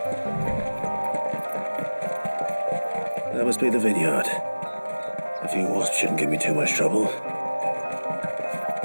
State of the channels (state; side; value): inverted; both; correlation -1.00